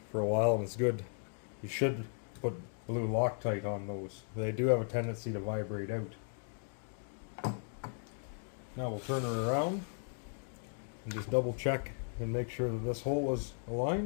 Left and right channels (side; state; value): right; silent; 54 dB below the other